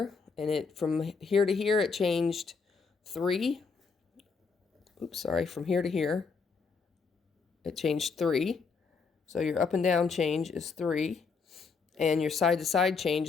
and it from here to here it changed 3. Oops, sorry. From here to here it changed 3. So your up and down change is 3, and your side to side change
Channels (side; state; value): right; quieter; 5.0 dB